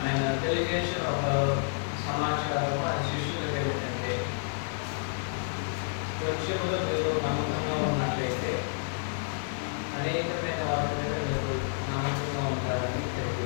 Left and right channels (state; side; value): silent; right; digital silence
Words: ఆయన తెలియజేసిన ఒక సమాచారం ఆయన శిష్యులకు ఏమిటంటే కొంచెంలో మీరు నమ్మకంగా ఉన్నట్లయితే అనేకమైన వాటి మీద మీరు నమ్మకంగా ఉంటారని